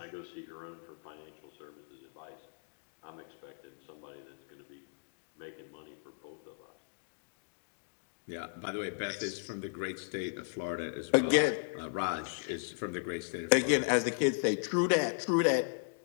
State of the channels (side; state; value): right; silent; digital silence